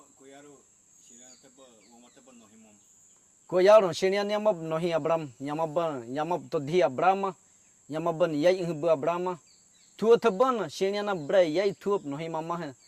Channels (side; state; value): both; identical; correlation 1.00